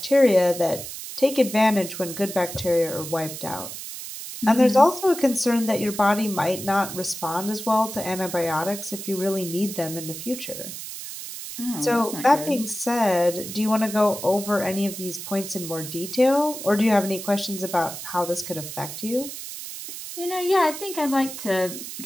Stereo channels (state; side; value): noise; right; hiss, 9 dB below the sound